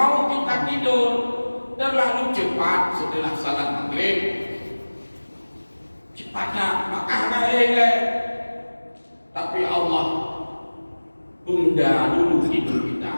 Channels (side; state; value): both; inverted; correlation -1.00